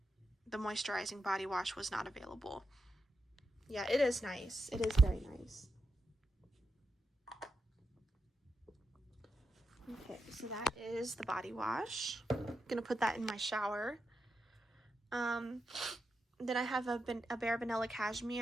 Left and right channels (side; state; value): both; normal; correlation 0.86